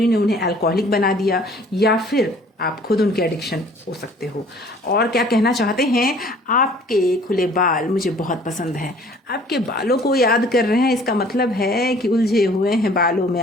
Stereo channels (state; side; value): normal; both; correlation 0.53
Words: ने उन्हें अल्कोहलिक बना दिया, या फिर आप खुद उनके एडिक्शन हो सकते हो। और क्या कहना चाहते हैं, आपके खुले बाल मुझे बहुत पसंद हैं, आपके बालों को याद कर रहे हैं। इसका मतलब है कि उलझे हुए हैं बालों में